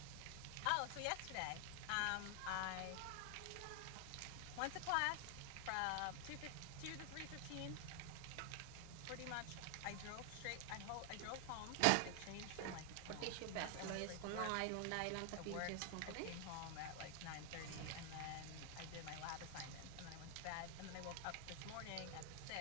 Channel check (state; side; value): different; both; correlation 0.00